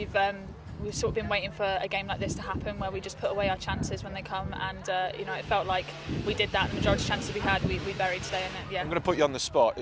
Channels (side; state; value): both; identical; correlation 1.00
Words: sort of been waiting for a game like this to happen, where we just put away our chances when they come, and it felt like we did that. The majority of chances we had, we buried today. And yeah, I'm going to put you on the spot.